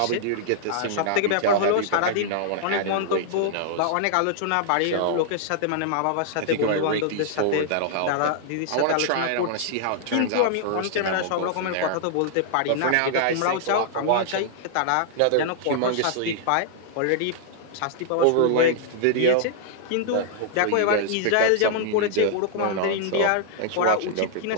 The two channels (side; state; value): both; different; correlation -0.01